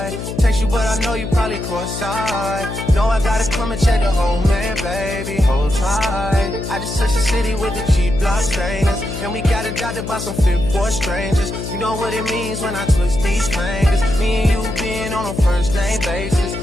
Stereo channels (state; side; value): noise; left; hum, 7 dB below the sound